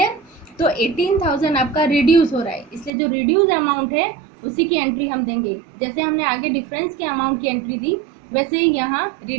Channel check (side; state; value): left; drops out; at 2.9 s